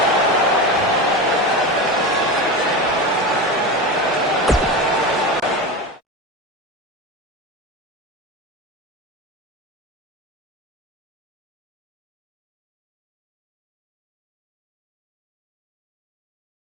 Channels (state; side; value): normal; both; correlation 0.22